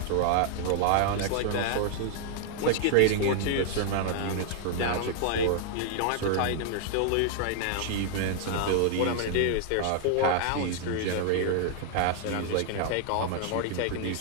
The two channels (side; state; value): both; different; correlation 0.00